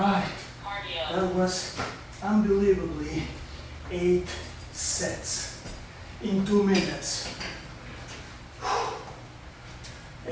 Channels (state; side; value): identical; both; correlation 1.00